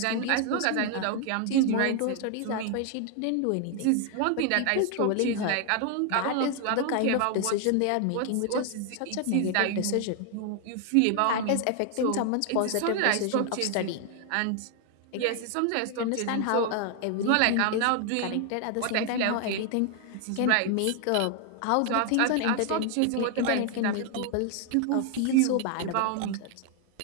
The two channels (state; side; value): different; both; correlation 0.00